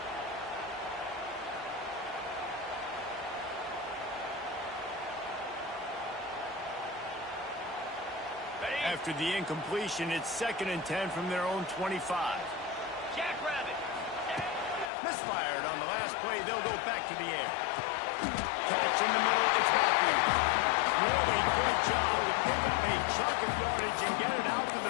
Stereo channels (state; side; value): drops out; right; at 14.9 s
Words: After the incompletion, it's 2nd and 10 from their own 25. Misfired on the last play. They'll go back to the air. Catch in the middle. It's Matthews. Really good job to pick up a chunk of yardage and get it out to